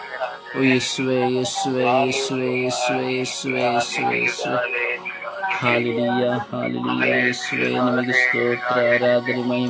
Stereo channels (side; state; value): both; identical; correlation 1.00